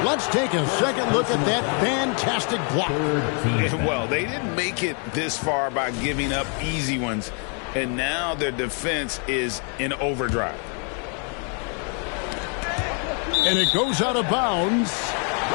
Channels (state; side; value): quieter; right; 39.9 dB